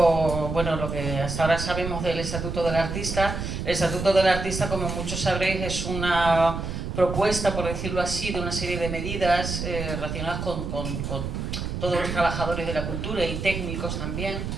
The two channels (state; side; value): noise; right; rumble, 4 dB below the sound